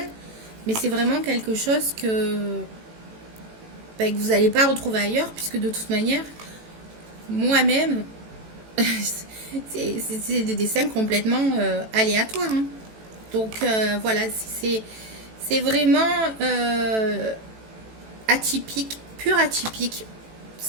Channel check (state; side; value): late; left; 18 ms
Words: mais c'est vraiment quelque chose que vous n'allez pas retrouver ailleurs, puisque de toute manière, moi-même, c'est des dessins complètement aléatoires. Hein. Donc voilà, c'est vraiment atypique, pur atypique.